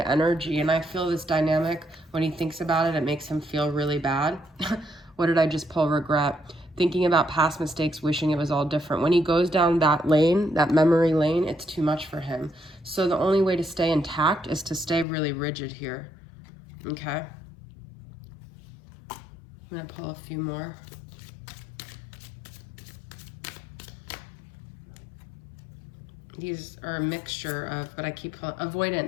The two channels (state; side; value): drops out; right; at 15.1 s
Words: energy, and I feel this dynamic, when he thinks about it, it makes him feel really bad. What did I just pull? Regret. Thinking about past mistakes, wishing it was all different. When he goes down that lane, that memory lane, it's too much for him. So the only way to stay intact is to stay really rigid here. Okay? I'm going to pull a few more. These are a mixture of, but I keep pulling, avoidant.